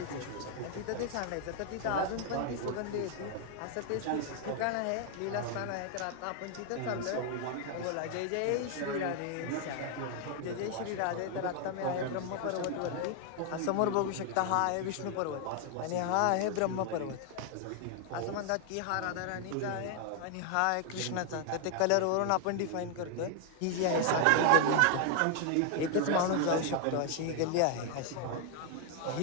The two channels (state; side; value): different; both; correlation 0.00